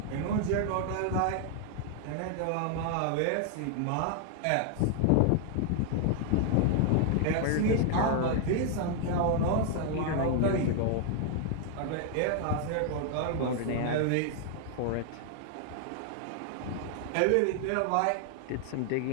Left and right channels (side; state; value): both; different; correlation 0.00